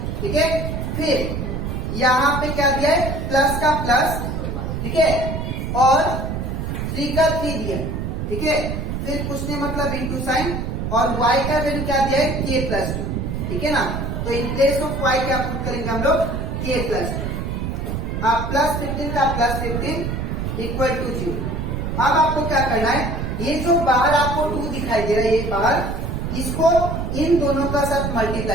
ठीक है, फिर यहाँ पे क्या दिया है, प्लस का प्लस, ठीक है, और 3 का 3 दिया। ठीक है, फिर कुछ नहीं मतलब इंटू साइन, और y का वैल्यू क्या दिया है, k प्लस 2। ठीक है ना, तो इन प्लेस ऑफ y क्या पुट करेंगे हम लोग, k प्लस 2। अब प्लस 15 का प्लस 15 इक्वल टू 0। अब आपको क्या करना है, ये जो बाहर आपको 2 दिखाई दे रहा है, ये बाहर, इसको इन दोनों का साथ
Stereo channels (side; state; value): right; noise; rumble, 3 dB below the sound